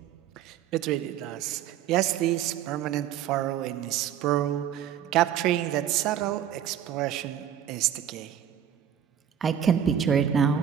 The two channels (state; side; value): quieter; left; 9.8 dB